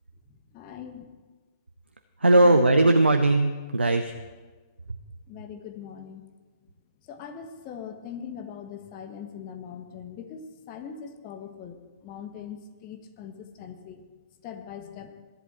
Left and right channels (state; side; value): inverted; both; correlation -0.80